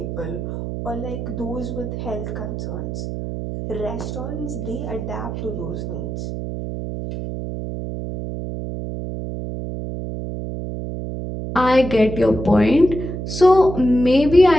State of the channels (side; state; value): right; noise; hum, 6 dB below the sound